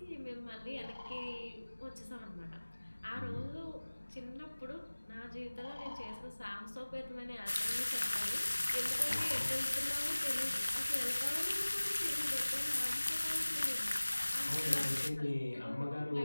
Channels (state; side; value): inverted; both; correlation -1.00